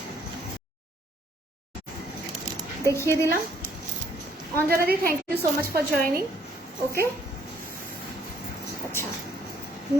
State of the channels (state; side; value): normal; both; correlation 0.65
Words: দেখিয়ে দিলাম। Anjana di, thank you so much for joining. Okay, আচ্ছা,